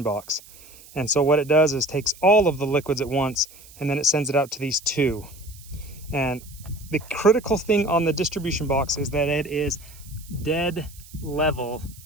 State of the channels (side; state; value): right; noise; hiss, 21 dB below the sound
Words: box. And so what it does is takes all of the liquids at once, and then it sends it out to these two. And the critical thing on the distribution box is that it is dead level